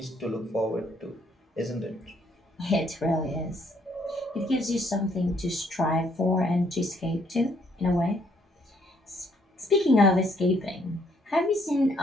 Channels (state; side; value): normal; both; correlation 0.68